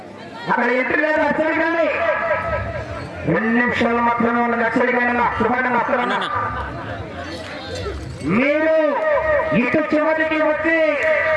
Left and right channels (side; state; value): both; identical; correlation 1.00